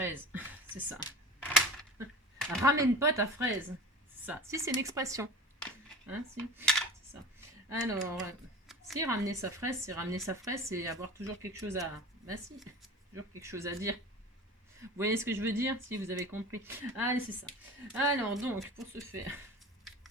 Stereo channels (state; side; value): normal; both; correlation 0.36